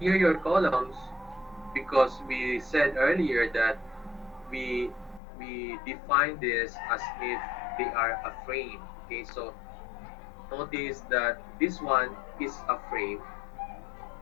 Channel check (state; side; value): drops out; right; at 5.2 s